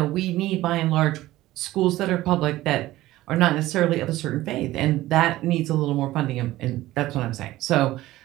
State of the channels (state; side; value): quieter; left; 16.4 dB